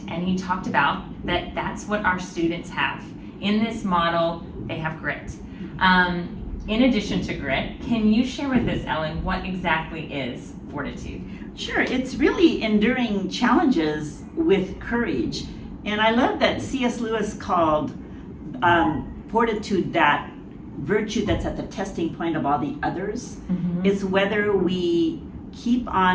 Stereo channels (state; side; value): identical; both; correlation 1.00